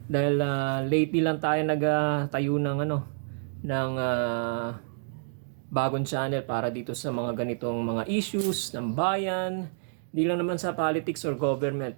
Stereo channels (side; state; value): left; silent; digital silence